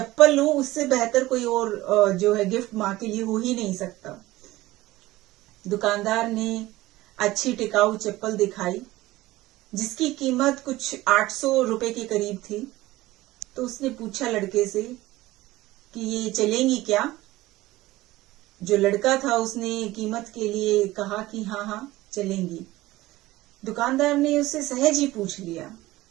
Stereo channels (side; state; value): left; quieter; 17.8 dB